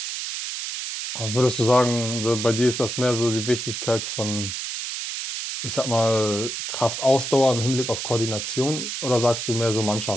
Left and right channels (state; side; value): noise; right; hiss, 5 dB below the sound